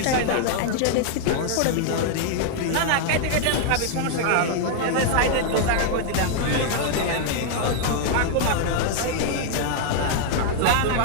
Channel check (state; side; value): different; both; correlation 0.00